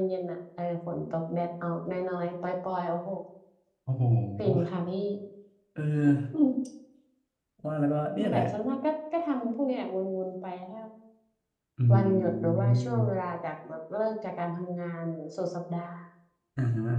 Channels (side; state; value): both; identical; correlation 1.00